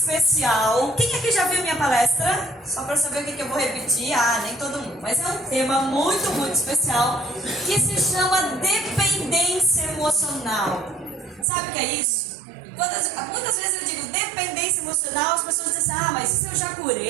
Quem aqui já viu minha palestra? Só para saber o que eu vou repetir. Nem todo mundo. Mas é um tema muito especial que se chama dependência emocional. Sabe o que é isso? Muitas vezes eu digo dependência emocional, as pessoas dizem assim, mas isso eu já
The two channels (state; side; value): drops out; left; at 11.5 s